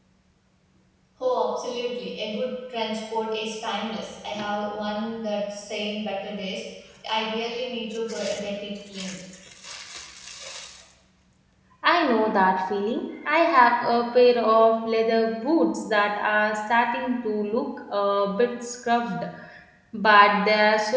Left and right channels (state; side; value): identical; both; correlation 1.00